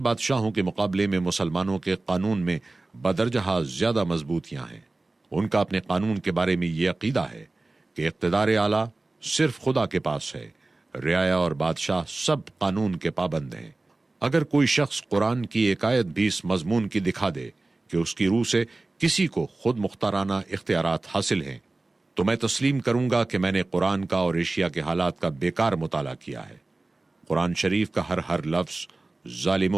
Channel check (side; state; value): left; quieter; 3.2 dB